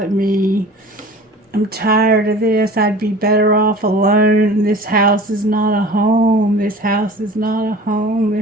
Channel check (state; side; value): normal; both; correlation 0.42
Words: me. I'm tired of this. I'd be better off alone. This house is not a home. This house is not a home.